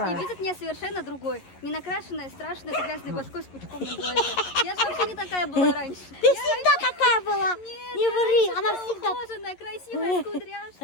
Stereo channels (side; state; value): right; late; 11 ms